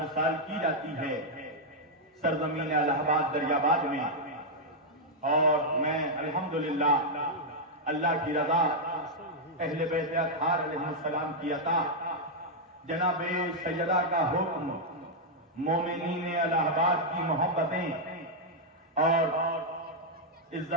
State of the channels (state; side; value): normal; both; correlation -0.03